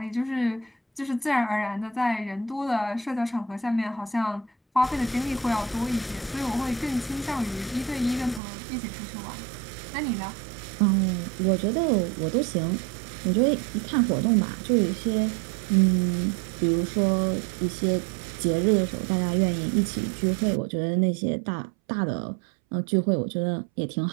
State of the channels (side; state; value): left; drops out; at 8.4 s